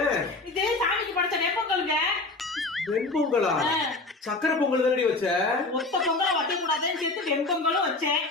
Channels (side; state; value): right; quieter; 3.3 dB